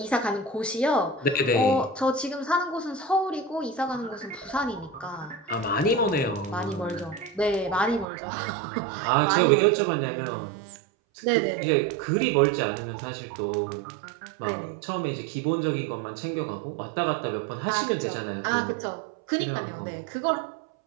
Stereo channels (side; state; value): left; drops out; at 8.1 s